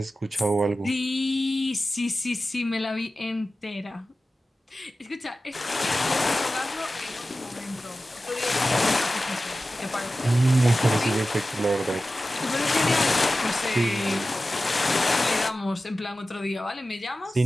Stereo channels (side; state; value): both; normal; correlation 0.95